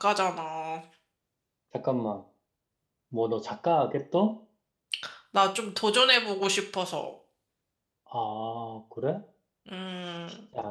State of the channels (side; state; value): both; identical; correlation 1.00